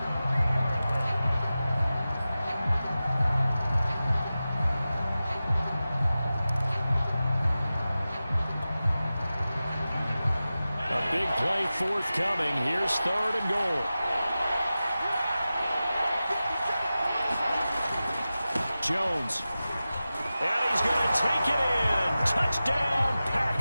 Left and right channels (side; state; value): both; inverted; correlation -0.95